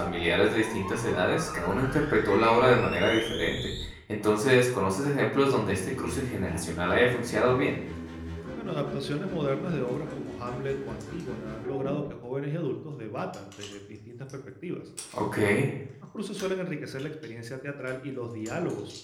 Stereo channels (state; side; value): identical; both; correlation 1.00